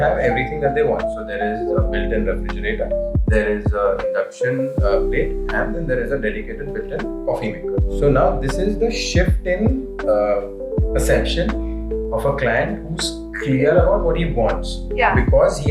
everything that they want. So there is a built-in refrigerator, there is an induction plate, and then there is a dedicated built-in coffee maker. So now this is the shift in perception of a client who's clear about what he wants, because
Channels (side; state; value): both; identical; correlation 1.00